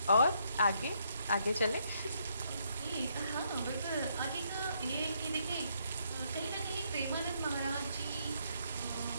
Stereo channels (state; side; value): inverted; both; correlation -0.73